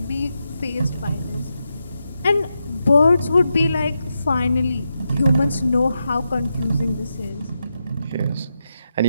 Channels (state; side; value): inverted; both; correlation -0.86